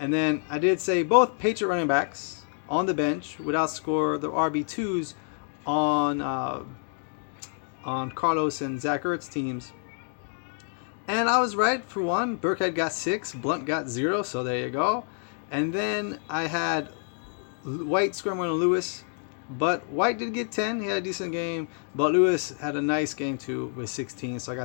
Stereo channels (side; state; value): right; silent; 60 dB below the other